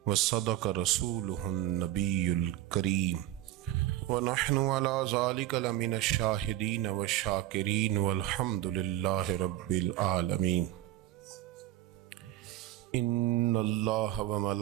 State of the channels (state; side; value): quieter; left; 14.2 dB